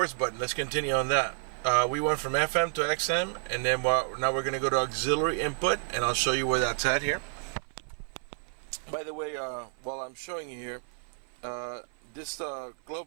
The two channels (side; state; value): left; silent; 56 dB below the other